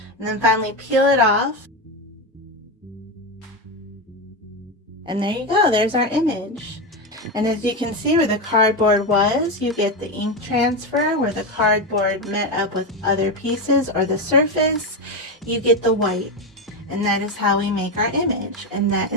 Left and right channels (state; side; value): normal; both; correlation 0.13